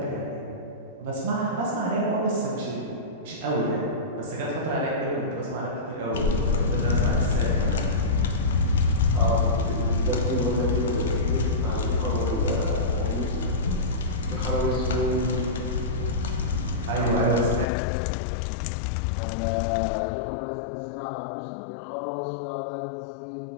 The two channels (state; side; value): drops out; right; at 17.7 s